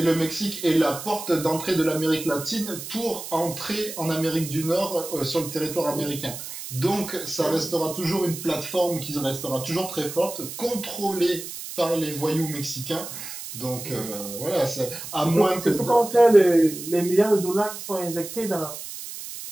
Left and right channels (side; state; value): right; noise; hiss, 10 dB below the sound